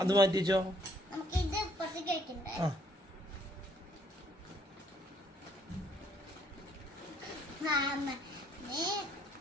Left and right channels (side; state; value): both; normal; correlation 0.66